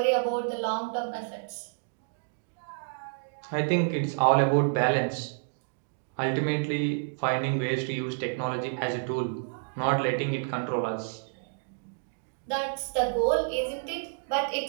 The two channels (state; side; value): silent; left; digital silence